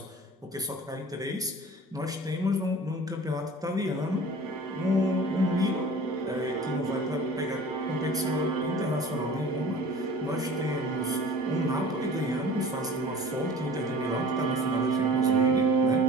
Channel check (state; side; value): normal; both; correlation 0.43